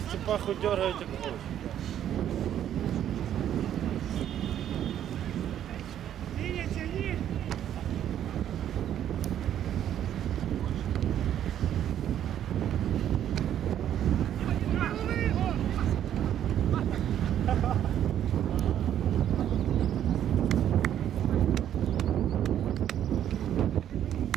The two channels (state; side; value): quieter; left; 10.6 dB